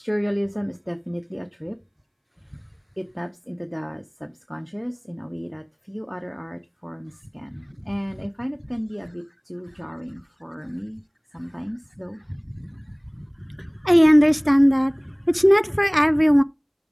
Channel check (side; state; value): both; identical; correlation 1.00